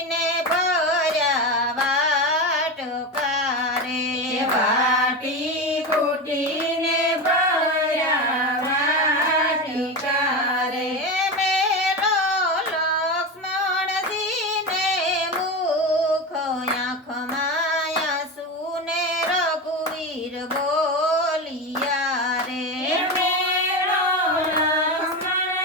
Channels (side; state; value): both; normal; correlation 0.20